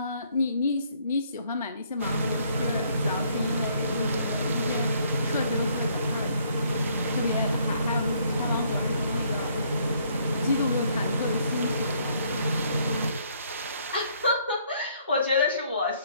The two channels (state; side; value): inverted; both; correlation -0.66